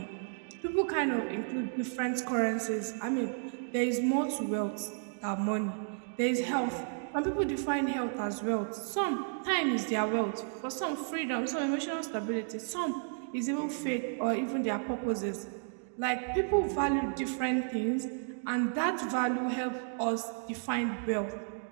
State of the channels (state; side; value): silent; left; digital silence